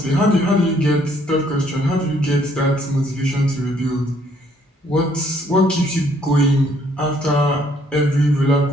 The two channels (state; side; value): normal; both; correlation 0.66